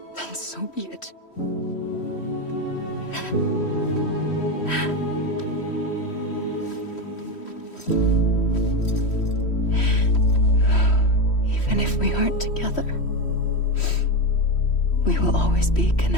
then so be it. Even if we aren't together, we will always be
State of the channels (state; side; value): late; right; 3.1 ms